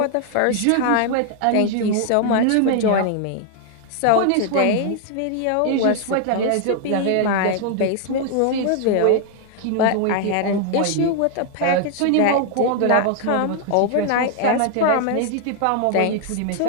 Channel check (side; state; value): both; different; correlation 0.00